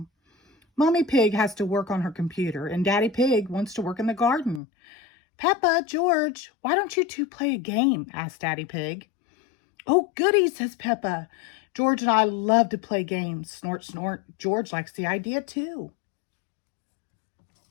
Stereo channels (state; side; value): drops out; right; at 4.6 s